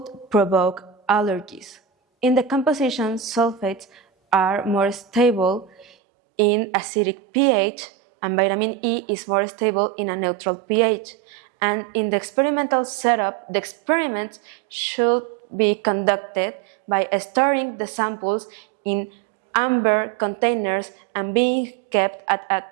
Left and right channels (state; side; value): drops out; left; at 5.9 s